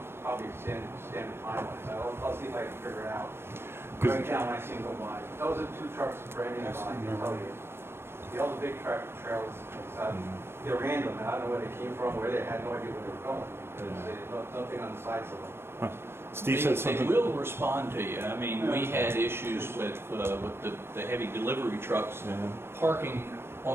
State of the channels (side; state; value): left; late; 0.12 ms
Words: probably standard time, so I'll see if I can figure it out. 'Cause- Right now, when I see them go by. Those are 2 trucks branded on, I can tell you. The other big truck trailers, they're random, and I don't know where they came from, where they had no idea where they were going, because there's nothing on the sides of them. Steve said They something. will respond to you. I mean, we had issues with the heavy delivery trucks Yeah. parking